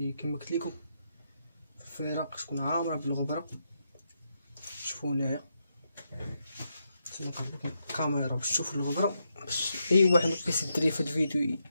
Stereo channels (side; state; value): both; inverted; correlation -0.82